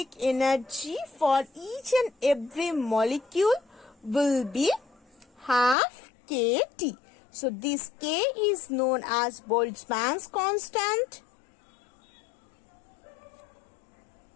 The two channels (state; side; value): drops out; right; at 5.8 s